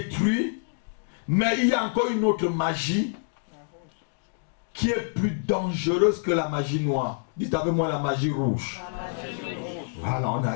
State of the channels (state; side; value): silent; right; digital silence